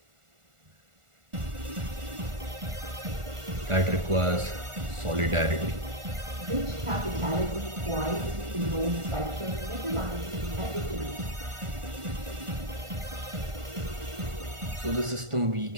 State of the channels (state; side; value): late; left; 1.4 ms